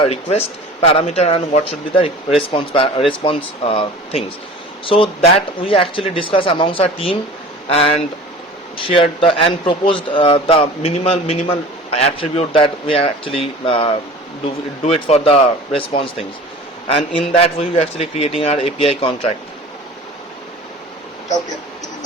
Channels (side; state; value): both; normal; correlation 0.41